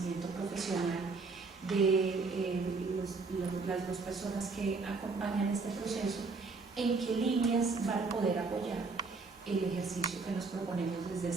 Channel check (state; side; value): quieter; left; 4.2 dB